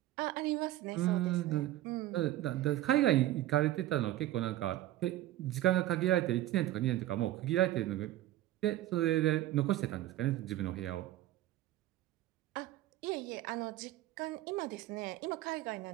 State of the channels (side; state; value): left; quieter; 14.8 dB